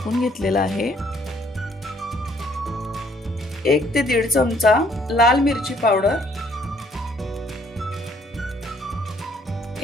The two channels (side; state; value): both; normal; correlation 0.64